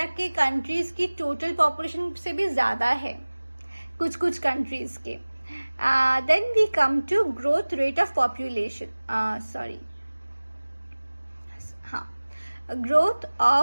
के कंट्रीज की टोटल पॉपुलेशन से भी ज़्यादा है कुछ कंट्रीज के। Then we come to growth rate of population, growth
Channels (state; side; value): inverted; both; correlation -1.00